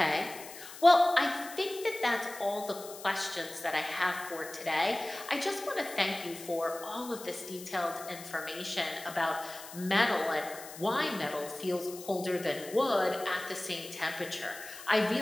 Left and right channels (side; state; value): left; noise; hiss, 14 dB below the sound